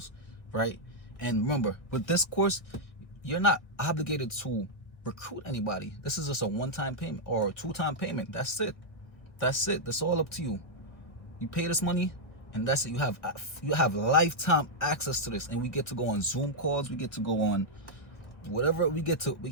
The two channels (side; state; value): right; late; 1.5 ms